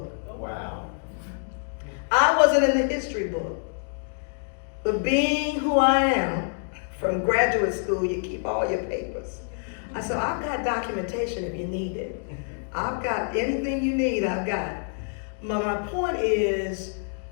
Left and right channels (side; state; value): right; silent; 61 dB below the other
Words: Wow. I wasn't in the history book. But being who I am, from graduate school, you keep all your papers. I said, I've got documentation if you need it. I've got anything you need, I've got. My point is,